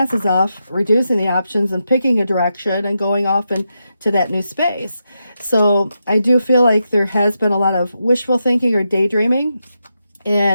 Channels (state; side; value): inverted; both; correlation -0.86